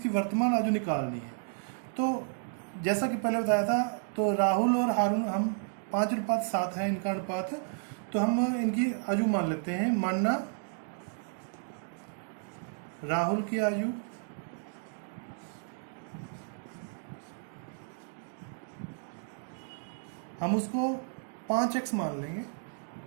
वर्तमान आयु निकालनी है। तो जैसा कि पहले बताया था, तो राहुल और हारून हम 5:7 है इनका अनुपात, तो हम इनकी आयु मान लेते हैं। मानना राहुल की आयु हम उसको 5x मान लेंगे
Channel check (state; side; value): silent; left; digital silence